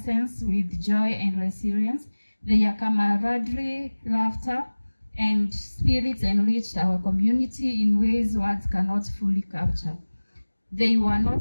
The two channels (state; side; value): inverted; both; correlation -1.00